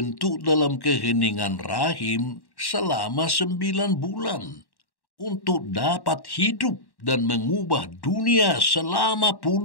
dalam keheningan rahim selama 9 bulan untuk dapat hidup dan mengubah dunia selama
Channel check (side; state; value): right; late; 1.1 ms